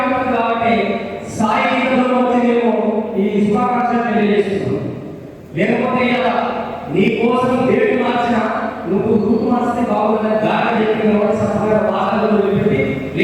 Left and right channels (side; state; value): both; identical; correlation 1.00